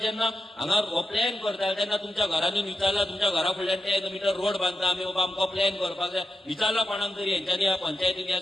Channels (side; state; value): both; normal; correlation 0.89